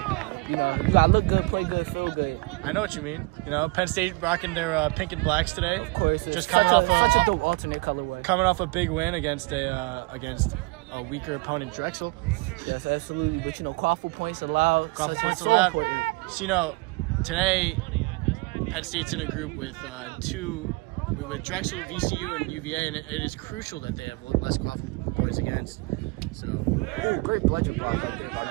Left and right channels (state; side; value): quieter; left; 25.9 dB